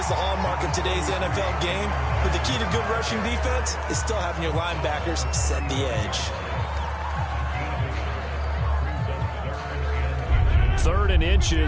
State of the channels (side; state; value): both; identical; correlation 1.00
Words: the hallmark of today's NFL game, but the key to good rushing defense is still having your linebackers set the edge. 3rd and